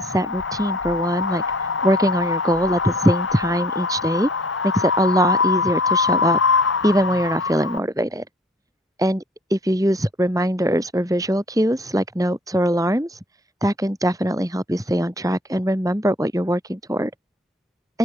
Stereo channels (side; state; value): both; normal; correlation 0.55